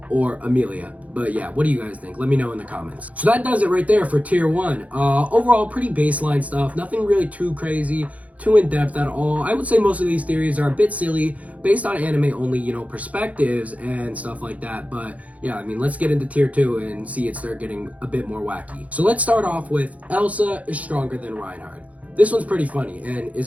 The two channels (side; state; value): left; late; 0.069 ms